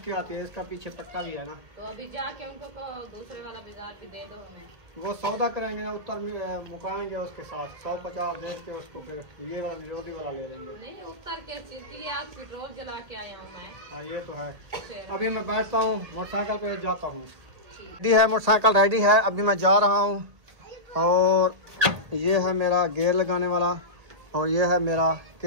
के आती है, इसका पीछे पट्टा भी है ना। तो अभी जाके उनको दूसरे वाला बाजार पे दे दो हमें। वो सौदा करेंगे ना, उत्तर मुकाएंगे उसके साथ 150 दे के उसको, फिर ये वाला निरोधी वाला ले लेंगे। नहीं उत्तर के चीज के लिए आज पेट्रोल जला के आया हूँ मैं। हाँ ये तो है। अभी मैं बैठता हूँ, मोटरसाइकिल पे जाता हूँ। रेडी है, मोटरसाइकिल रेडी है, अभी मैं जा रहा हूँ। और ये है मेरा गेयर लगाने वाला और ये है मेरा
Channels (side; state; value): left; late; 1.8 ms